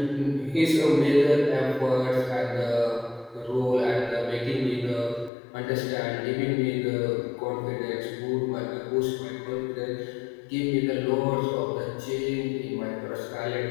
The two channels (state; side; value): drops out; right; at 5.3 s